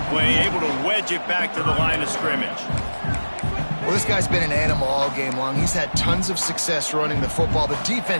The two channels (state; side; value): inverted; both; correlation -1.00